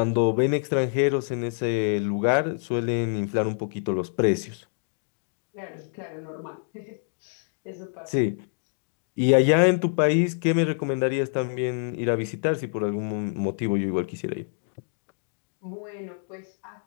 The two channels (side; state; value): right; silent; digital silence